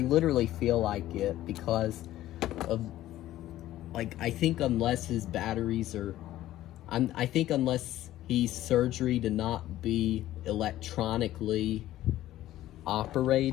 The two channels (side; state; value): right; quieter; 14.3 dB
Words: feel like it, because of... Like, I think unless his batteries are... I think unless he's surgery to not be electronically